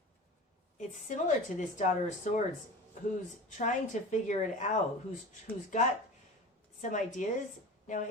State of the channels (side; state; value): both; normal; correlation 0.34